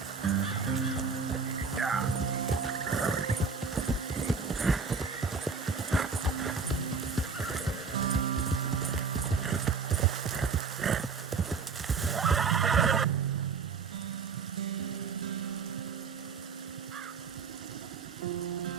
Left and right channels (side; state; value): left; quieter; 5.2 dB